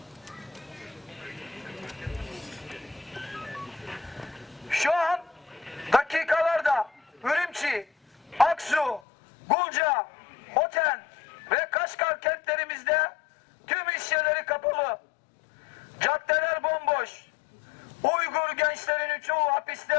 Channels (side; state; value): right; drops out; at 9.0 s